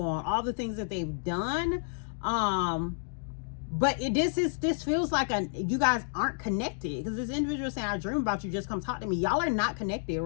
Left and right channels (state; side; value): silent; right; digital silence